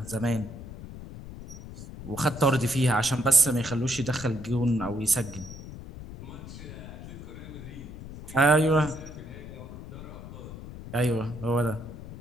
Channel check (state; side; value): noise; left; rumble, 12 dB below the sound